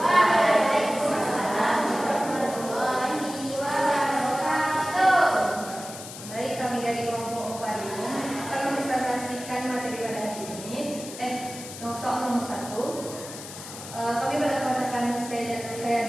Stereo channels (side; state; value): left; noise; hiss, 12 dB below the sound